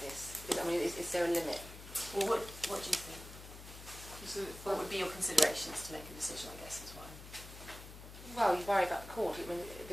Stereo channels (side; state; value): left; noise; hum, 14 dB below the sound